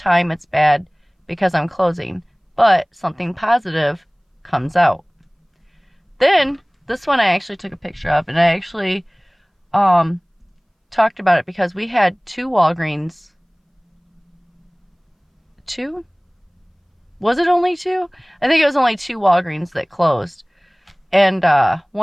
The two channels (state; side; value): identical; both; correlation 1.00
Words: it's bad because I'm closing, but something positive comes out. Then, this one I actually took a picture of, and I actually talked about it because we had two Walgreens. Two? Was it only two? I think it was only two Walgreens that closed. And